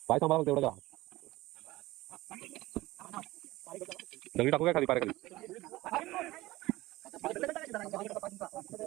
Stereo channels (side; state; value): left; quieter; 18.4 dB